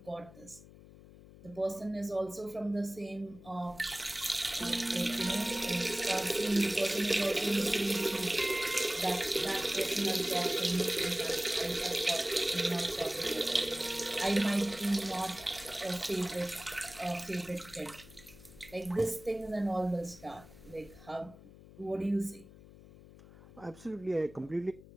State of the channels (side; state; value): left; noise; hum, 20 dB below the sound